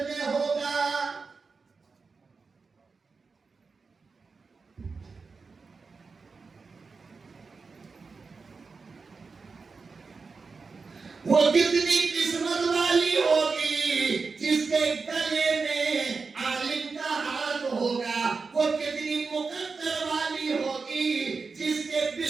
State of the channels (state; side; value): quieter; left; 4.6 dB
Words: ہوگا۔ وہ کتنی قسمت والی ہوگی جس کے گلے میں عالم کا ہاتھ ہوگا۔ وہ کتنی مقدر والی ہوگی جس کے